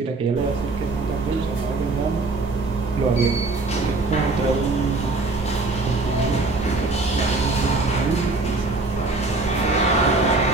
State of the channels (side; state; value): left; quieter; 3.4 dB